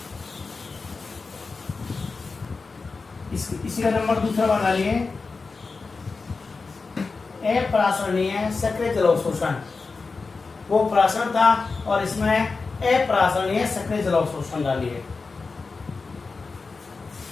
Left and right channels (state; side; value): quieter; right; 4.3 dB